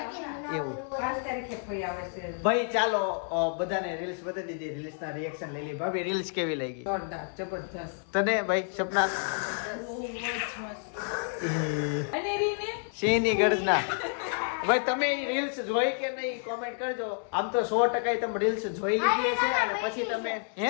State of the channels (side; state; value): right; silent; 56 dB below the other